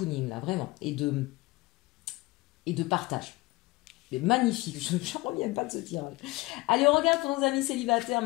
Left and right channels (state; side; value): quieter; right; 21.5 dB